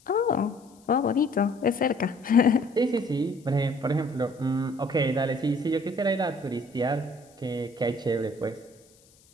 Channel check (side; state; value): left; noise; hiss, 29 dB below the sound